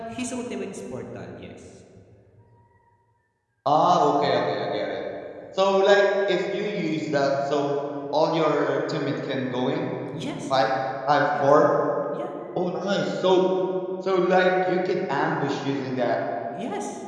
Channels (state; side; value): identical; both; correlation 1.00